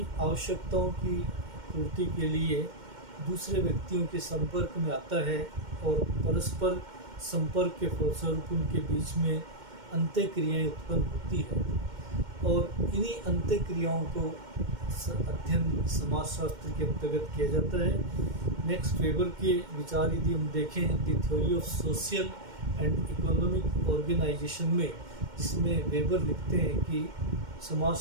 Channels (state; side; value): late; left; 2.1 ms